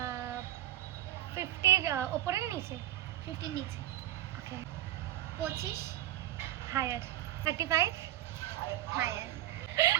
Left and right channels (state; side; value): quieter; left; 14.1 dB